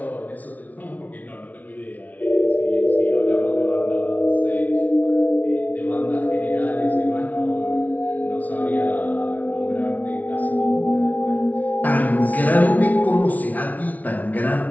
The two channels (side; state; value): right; late; 0.073 ms